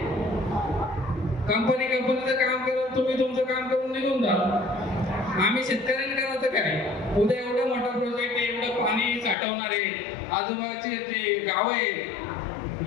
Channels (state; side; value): drops out; right; at 9.3 s